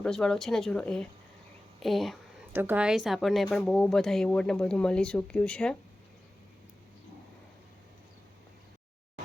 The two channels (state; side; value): normal; both; correlation 0.96